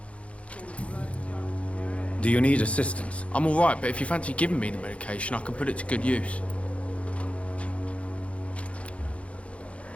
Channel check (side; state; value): right; late; 0.062 ms